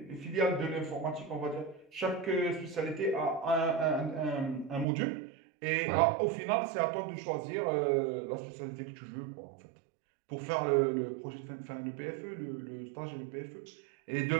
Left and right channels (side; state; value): left; drops out; at 4.9 s